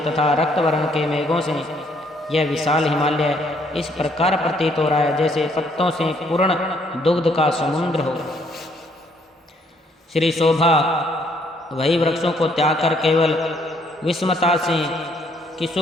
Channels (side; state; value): both; normal; correlation 0.67